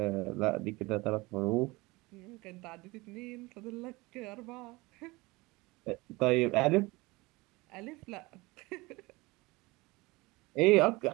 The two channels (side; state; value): left; quieter; 22.8 dB